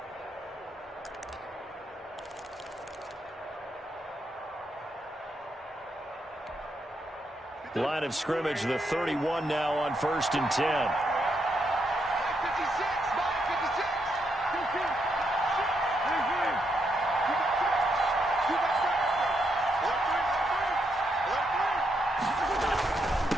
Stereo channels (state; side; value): normal; both; correlation 0.79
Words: Line of scrimmage, the 31 now on 1st and 10.